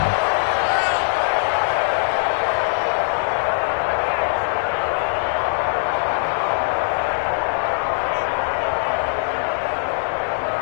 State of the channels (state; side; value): silent; right; digital silence